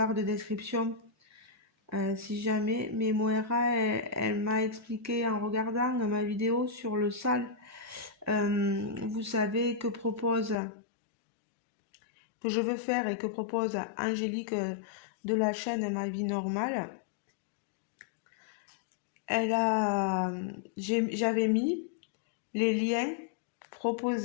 de description si jamais. Mais Moira, elle m'a expliqué en regardant ma vidéo sur le sale. Vous savez que je veux faire et que propose Angélique de la chaîne Ma Vie Normale. J'avais mis les liens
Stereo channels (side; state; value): right; drops out; at 10.6 s